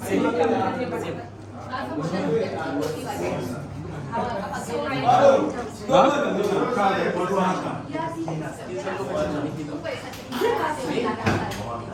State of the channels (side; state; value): both; identical; correlation 1.00